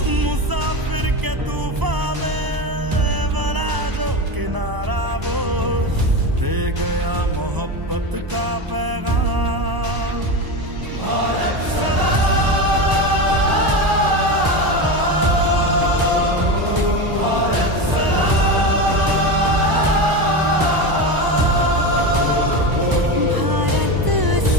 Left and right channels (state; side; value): late; left; 1.0 ms